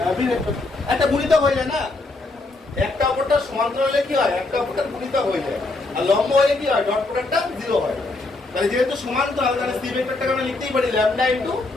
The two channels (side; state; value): right; quieter; 3.2 dB